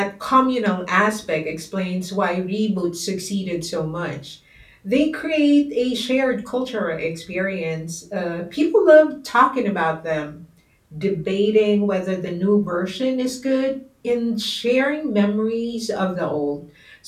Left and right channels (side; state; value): both; identical; correlation 1.00